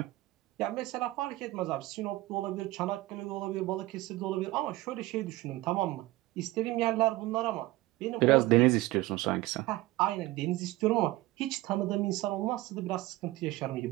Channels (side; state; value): left; quieter; 18.5 dB